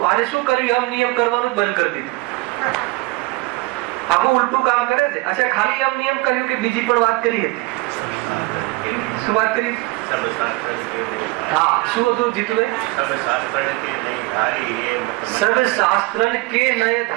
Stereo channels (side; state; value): left; quieter; 23.2 dB